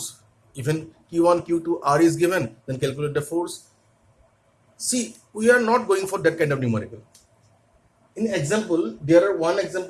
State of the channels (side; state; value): both; identical; correlation 1.00